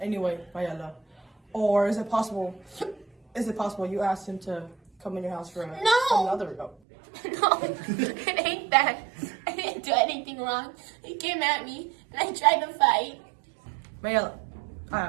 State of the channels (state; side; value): drops out; left; at 6.8 s